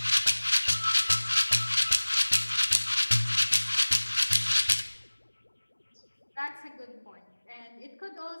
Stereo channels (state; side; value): inverted; both; correlation -1.00